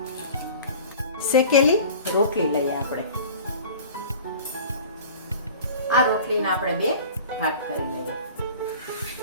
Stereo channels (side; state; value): both; inverted; correlation -0.41